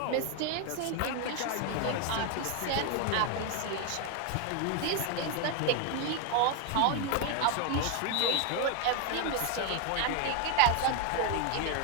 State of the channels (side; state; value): both; different; correlation 0.01